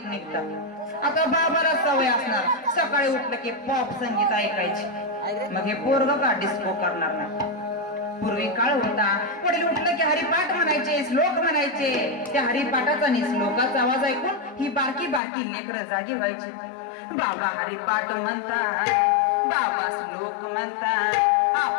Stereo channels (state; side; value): drops out; right; at 15.2 s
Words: निघतात. आता बाबाला सवय असणार सकाळी उठलं की पॉप संगीत ऐकायची, मग हे पोरग का डिस्को करणार नाही. पूर्वी काळ होता, वडील उठलं की हरिपाठ म्हणायचे, श्लोक म्हणायचे. त्या हरिपाठाचा आणि श्लोकाचा आवाज ऐकून ही बारकी बारकी लेकरं जागी व्हायची. बाबा हरिपाठ म्हणतात, बाबा श्लोक म्हणतात,